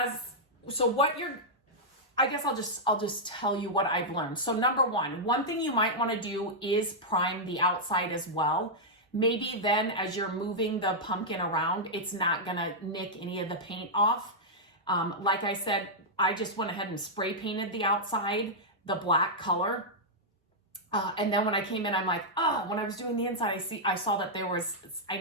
I guess I'll just tell you what I've learned. So number one thing you might want to do is prime the outside as well. Maybe then as you're moving the pumpkin around, it's not gonna nick any of the paint off. Like I said, I just went ahead and spray painted the outside, the black color. And then when I came in, I'm like, when I was doing the inside, I saw that I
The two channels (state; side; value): normal; both; correlation -0.07